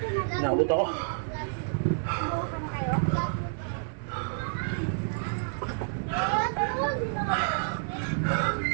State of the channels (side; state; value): left; silent; 58 dB below the other